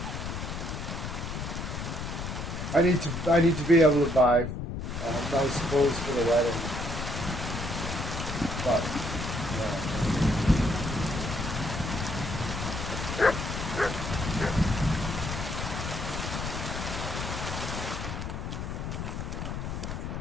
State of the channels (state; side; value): noise; left; rumble, 5 dB below the sound